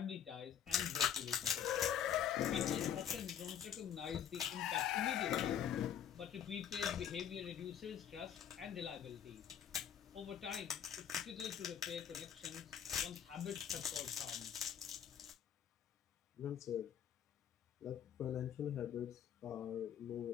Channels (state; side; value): quieter; right; 9.0 dB